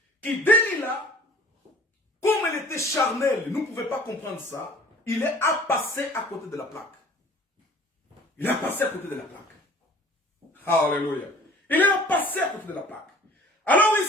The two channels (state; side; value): normal; both; correlation 0.48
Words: que Delilah, comme elle était charnelle, nous ne pouvions pas comprendre ça, il est à passer à côté de la plaque. Il est passé à côté de la plaque. Alléluia. Il est passé à côté de la plaque. Alors